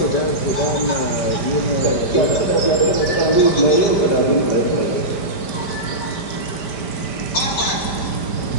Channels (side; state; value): right; late; 5.0 ms